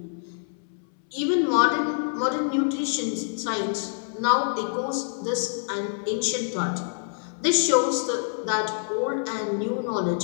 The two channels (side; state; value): right; silent; 61 dB below the other